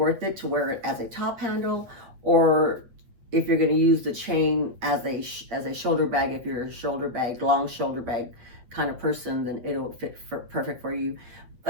it to wear it as a top handle, or if you're going to use the chain as a shoulder bag. If you're a long shoulder bag kind of person, then it'll fit perfect for you.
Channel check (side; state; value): left; late; 8.5 ms